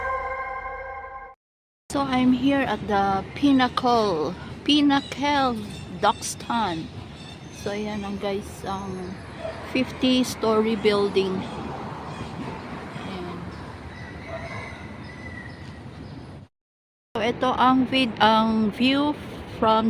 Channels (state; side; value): identical; both; correlation 1.00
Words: So I'm here at the Pinnacle Duxton. So ayan ang guys, ang 50-story building. Ayan. So ito ang view